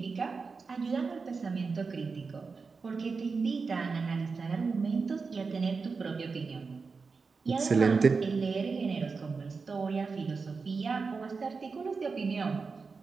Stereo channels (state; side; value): quieter; left; 4.7 dB